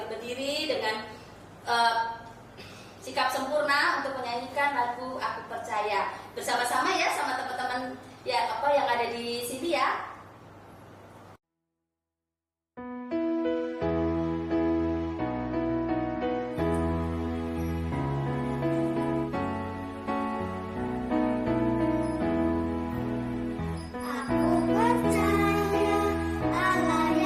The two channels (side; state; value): both; identical; correlation 1.00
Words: berdiri dengan sikap sempurna untuk menyanyikan lagu Aku Percaya bersama-sama ya, sama teman-teman ya yang ada di sini ya.